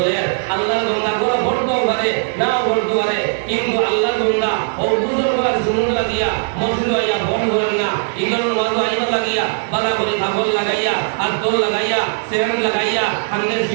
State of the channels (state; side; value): silent; left; digital silence